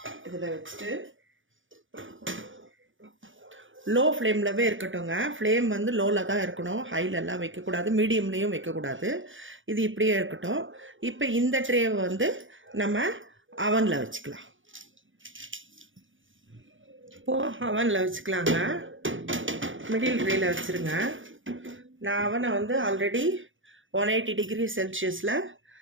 இதில் வச்சுட்டு லோ ஃப்ளேம்லவே இருக்கட்டும்ங்க. ஃப்ளேம் வந்து லோவில் தான் இருக்கணும், ஹைலெல்லாம் வைக்கக்கூடாது, மீடியம்லேயும் வைக்கக்கூடாது. இது இப்படியே இருக்கட்டும். இப்போ இந்த ட்ரேவை வந்து நம்ம அவனில் வச்சுக்கலாம். இப்போது அவனில் வச்சுக்கலாங்க. மிடில் ட்ரேயில் வச்சுருங்க. நான் அவனை வந்து ஆல்ரெடி 180 டிகிரி செல்சியஸில்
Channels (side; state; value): left; late; 0.57 ms